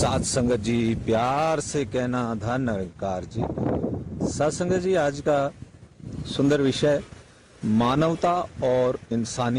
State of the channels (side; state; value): both; identical; correlation 1.00